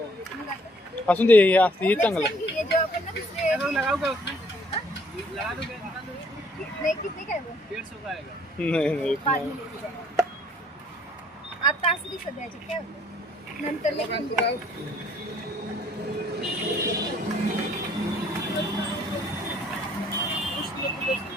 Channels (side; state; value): both; normal; correlation 0.61